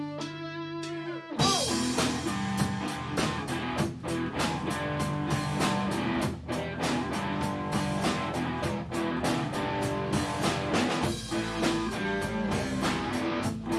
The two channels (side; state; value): both; identical; correlation 1.00